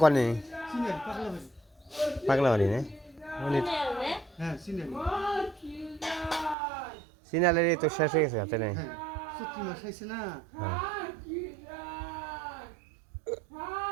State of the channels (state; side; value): drops out; left; at 6.6 s